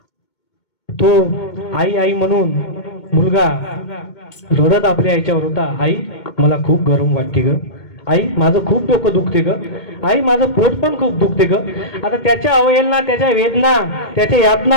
तो आई म्हणून मुलगा रडत आपल्या आईच्यावर होता. आई, मला खूप गरम वाटते ग. आई, माझं खूप डोकं दुखते ग. आई, माझं पोट पण खूप दुखते ग. आता त्याच्या अवहेलना, त्याच्या वेदना, त्याच्या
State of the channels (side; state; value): right; late; 2.2 ms